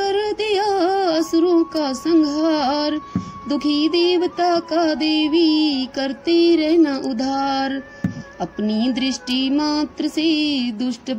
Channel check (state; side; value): identical; both; correlation 1.00